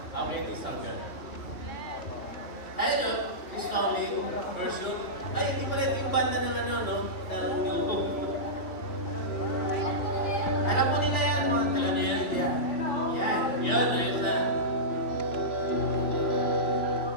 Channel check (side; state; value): right; late; 3.1 ms